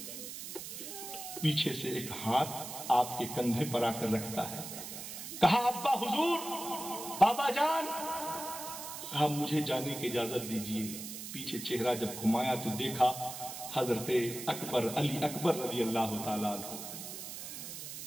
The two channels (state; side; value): noise; right; hiss, 9 dB below the sound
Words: پیچھے سے ایک ہاتھ آپ کے کندھے پر آ کر رکھتا ہے، کہا ابا حضور، بابا جان، کہا مجھے جانے کی اجازت دیجیے۔ پیچھے چہرہ جب گھمایا تو دیکھا حضرت اکبر، علی اکبر رضی اللہ تعالیٰ عنہ،